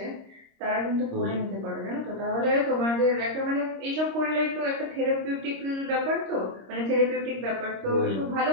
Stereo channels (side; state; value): left; late; 26 ms